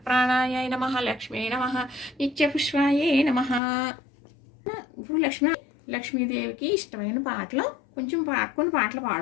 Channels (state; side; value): drops out; right; at 3.6 s